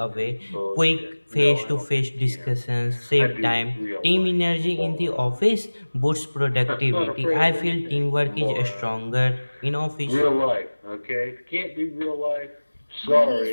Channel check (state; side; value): inverted; both; correlation -1.00